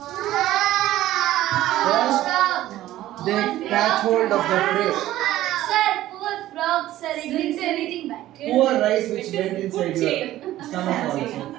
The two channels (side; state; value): left; quieter; 14.5 dB